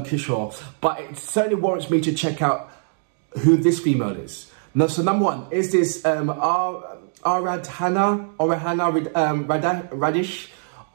Kishore. But it certainly warrants me to check out who this female is. Now, so number one, is this Aradhana Radish,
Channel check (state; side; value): silent; left; digital silence